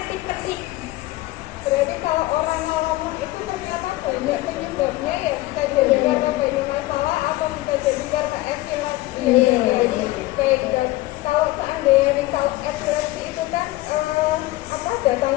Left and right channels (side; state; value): right; quieter; 18.3 dB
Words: Berarti kalau orang ngomong itu ternyata banyak penyebabnya ya, bisa jadi karena banyak masalah atau bisa jadi karena epilepsi. Iya. Jadi baik dok. Kalau seandainya kalau epilepsi itu kan